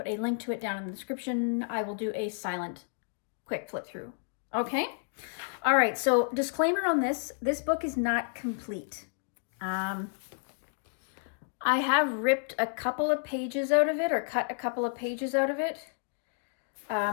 a link to it down in the description, I will do a silent quick flip through. Okay? All right, so disclaimer on this book is not complete. I have ripped a couple of pages out of it, or cut a couple of pages out of it,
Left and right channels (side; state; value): right; silent; digital silence